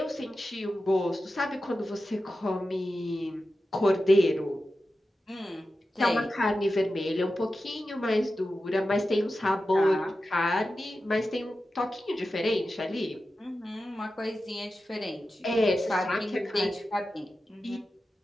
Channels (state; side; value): normal; both; correlation 0.92